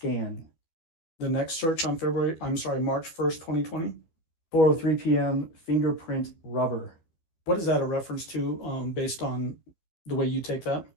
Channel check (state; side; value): late; right; 12 ms